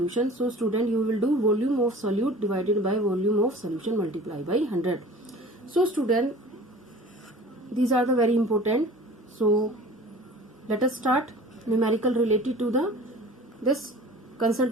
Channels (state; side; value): normal; both; correlation 0.43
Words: so student, you will do volume of solute divided by volume of solution multiply by 100. So student, these are the very important. So let us start numerical related to this